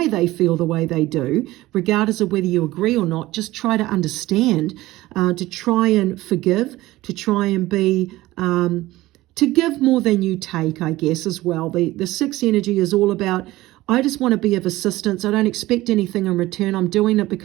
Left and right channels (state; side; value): quieter; left; 17.6 dB